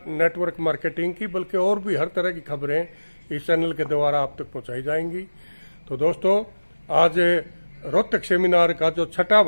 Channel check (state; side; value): inverted; both; correlation -1.00